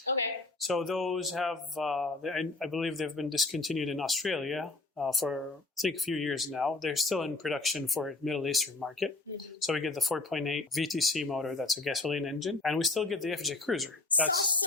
Okay. So those have, I believe they've been discontinued in Australia for, I think, a few years now. They're still in production for the Middle Eastern market. Mm-hmm. So we get the 4.8 VTC motor, that's a gasoline engine. And we still get the FJ Cruiser. That's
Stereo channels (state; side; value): quieter; right; 3.2 dB